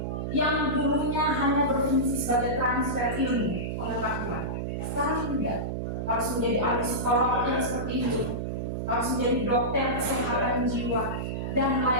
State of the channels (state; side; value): noise; right; hum, 3 dB below the sound